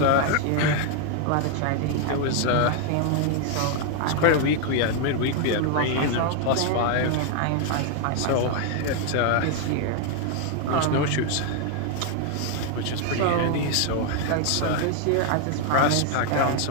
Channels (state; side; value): different; both; correlation 0.00